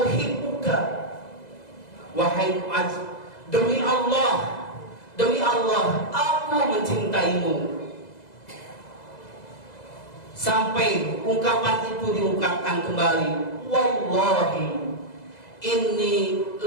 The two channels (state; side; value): late; right; 2.0 ms